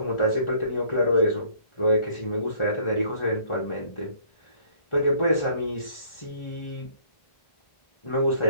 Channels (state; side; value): late; right; 1.4 ms